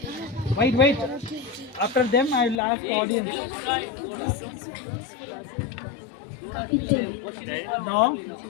Wait. After them, I will ask the audience. No?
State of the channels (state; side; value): drops out; right; at 2.6 s